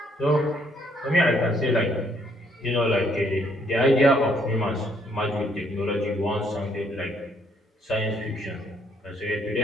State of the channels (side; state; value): both; normal; correlation 0.68